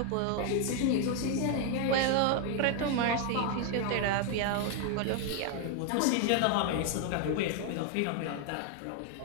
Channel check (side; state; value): both; different; correlation 0.00